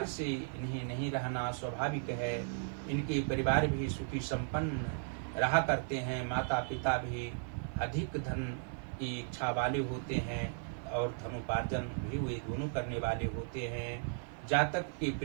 से इन्हें नहीं रहना स्वाभाविक है। इनके परिवार भी सुखी संपन्न रहा करते हैं, माता पिता भी अधिक धन की इच्छा वाले होते हैं और धनोपार्जन भी वे दोनों करने वाले होते हैं। जातक की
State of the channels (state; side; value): silent; left; 54 dB below the other